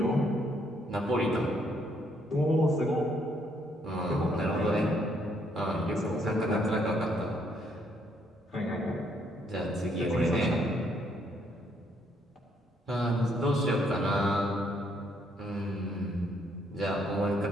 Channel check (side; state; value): both; normal; correlation 0.71